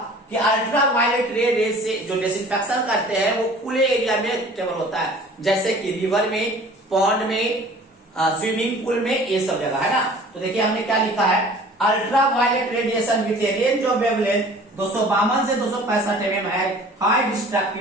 कि अल्ट्रा वायलेट रे से जो डिसइंफेक्शन करते हैं वो खुले एरिया में केवल होता है, जैसे कि रिवर में, पॉन्ड में, स्विमिंग पूल में, ये सब जगह है ना। तो देखिए हमने क्या लिखा है, ultra violet radiation with a range of wavelength 252 से 265 mm है हाई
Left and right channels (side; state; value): both; normal; correlation 0.47